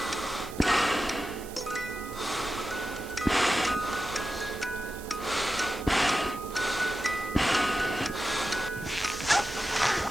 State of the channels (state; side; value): noise; right; hiss, 17 dB below the sound